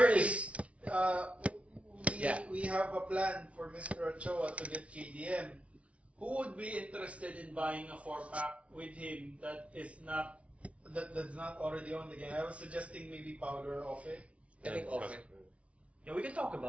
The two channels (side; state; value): left; late; 0.063 ms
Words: is We have a plan for Mr. Ochoa to get KDM. Who would be interested in buying a 4-pack with him that's not already on the game? I was suggesting maybe Powder off it. I think often. yeah. We can talk